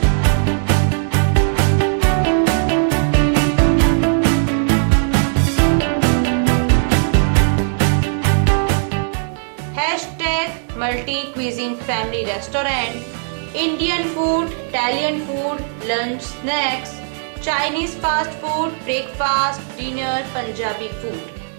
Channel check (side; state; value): left; silent; digital silence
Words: Multi cuisine family restaurant, Indian food, Italian food, lunch, snacks, Chinese fast food, breakfast, dinner, Punjabi food.